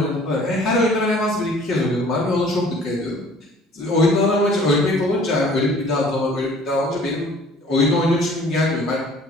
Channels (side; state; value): both; normal; correlation 0.52